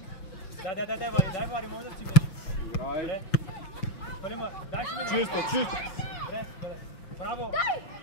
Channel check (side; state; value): right; late; 5.8 ms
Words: Дай, Вари, може да си Играй! дай си мине. Чисто, чисто! Добре, браво!